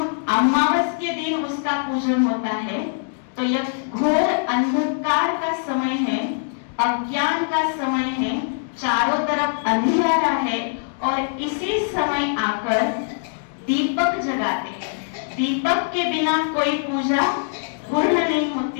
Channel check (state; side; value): silent; right; digital silence